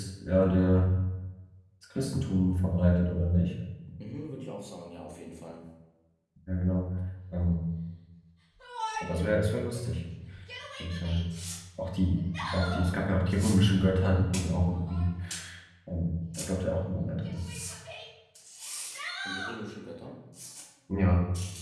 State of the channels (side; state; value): both; identical; correlation 1.00